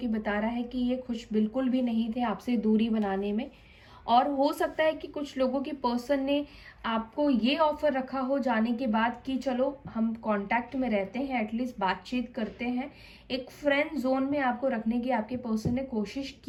बता रहा है कि ये खुश बिल्कुल भी नहीं थे आपसे दूरी बनाने में। और हो सकता है कि कुछ लोगों के पर्सन ने आपको ये ऑफर रखा हो जाने के बाद कि चलो हम कांटेक्ट में रहते हैं, एटलीस्ट बातचीत करते हैं, एक फ्रेंड जोन में आपको रखने की आपके पर्सन ने कोशिश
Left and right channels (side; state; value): both; identical; correlation 1.00